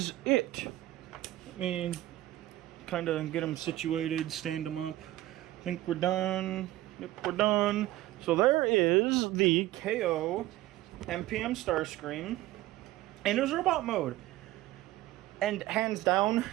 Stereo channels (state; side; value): quieter; left; 16.0 dB